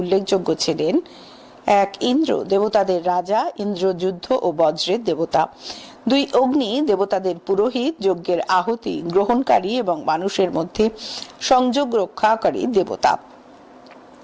ছিলেন 1 ইন্দ্র, দেবতাদের রাজা, ইন্দ্র যুদ্ধ ও বজ্রের দেবতা। 2 অগ্নি, দেবতাদের পুরোহিত, যজ্ঞের আহুতি গ্রহণকারী এবং মানুষের মধ্যে সংযোগ রক্ষাকারী দেবতা।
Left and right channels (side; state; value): both; identical; correlation 1.00